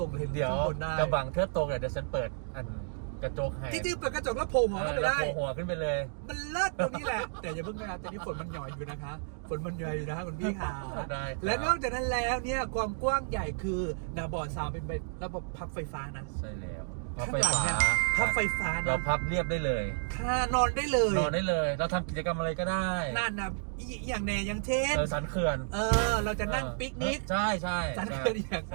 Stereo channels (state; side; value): silent; left; digital silence